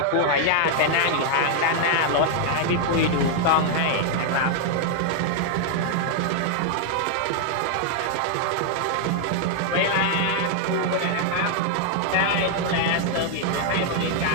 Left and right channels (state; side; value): different; both; correlation 0.00